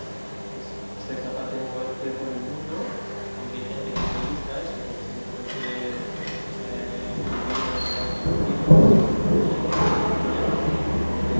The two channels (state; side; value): inverted; both; correlation -1.00